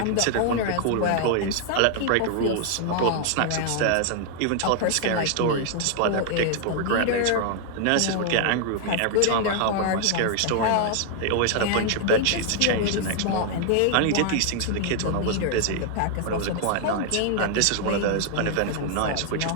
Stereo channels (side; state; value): both; different; correlation 0.00